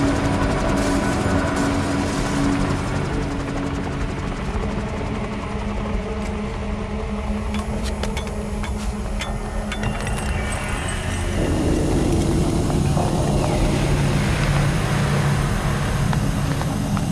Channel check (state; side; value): identical; both; correlation 1.00